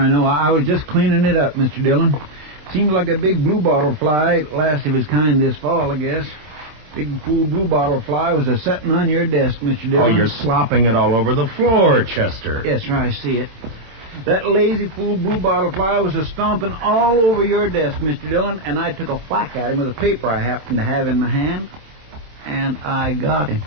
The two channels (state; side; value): late; left; 27 ms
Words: know. I was just cleaning it up, Mr. Dillon. Seems like a big bluebottle fly, last of his kind this fall, I guess. Big fool bluebottle fly was a-setting on your desk, Mr. Dillon. Oh, you're slopping it all over the floor, Chester. Yes, sir, I see it. That lazy fool bluebottle fly was a-stomping all over your desk, Mr. Dillon, and I took a whack at him with a paper I happened to have in my hand, and I got him.